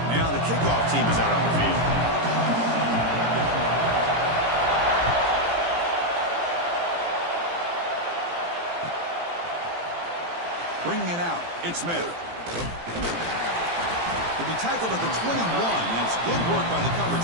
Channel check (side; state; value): left; late; 18 ms